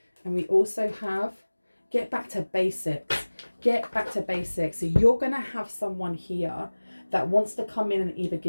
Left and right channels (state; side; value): inverted; both; correlation -1.00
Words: And we also have get back to basics. Get back to basics. So you're going to have someone here that wants to come in and either